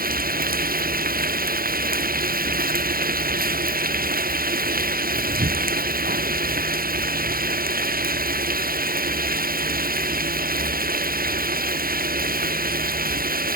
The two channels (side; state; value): left; late; 0.42 ms